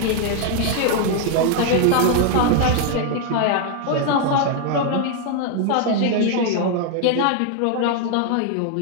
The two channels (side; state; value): both; different; correlation 0.00